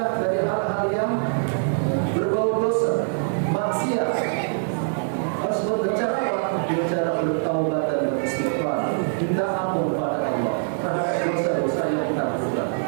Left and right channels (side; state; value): left; silent; 55 dB below the other